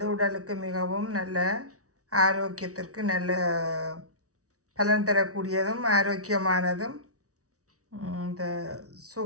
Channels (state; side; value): late; left; 0.66 ms